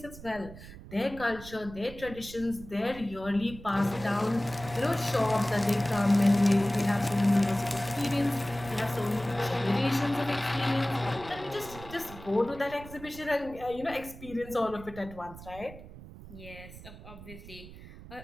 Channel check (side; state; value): right; noise; rumble, 15 dB below the sound